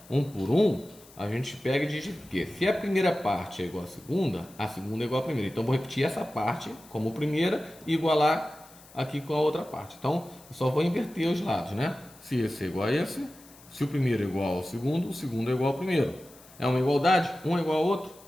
um por um, a gente pega e diz que se a primeira parte é igual à segunda é igual à primeira. Então vou repetir essa parte como primeira e igualar aqui com a outra parte. Então eu só vou inverter os lados, né? Se esse é igual a esse, se o primeiro é igual ao segundo, o segundo é igual ao primeiro. É uma igualdade? Um é igual ao outro,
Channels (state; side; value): noise; left; hiss, 23 dB below the sound